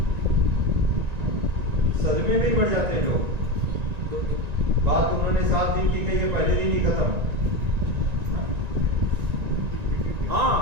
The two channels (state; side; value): late; left; 1.9 ms